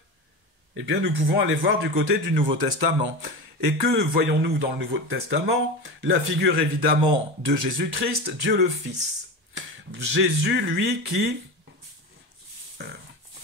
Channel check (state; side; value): late; left; 1.3 ms